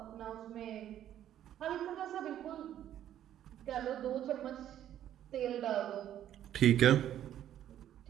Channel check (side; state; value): left; quieter; 11.3 dB